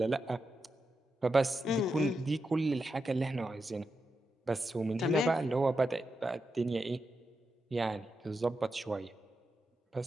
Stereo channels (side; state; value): both; normal; correlation 0.87